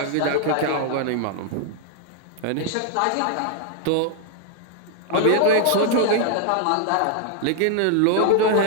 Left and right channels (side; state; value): both; different; correlation 0.00